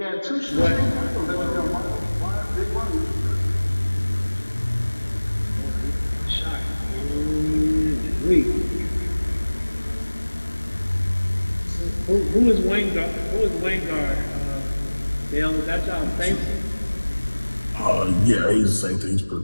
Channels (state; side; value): inverted; both; correlation -1.00